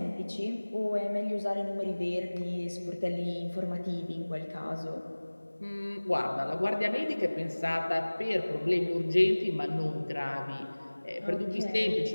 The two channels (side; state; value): both; inverted; correlation -1.00